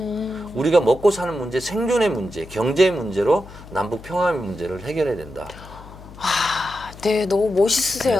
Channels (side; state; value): left; noise; hum, 17 dB below the sound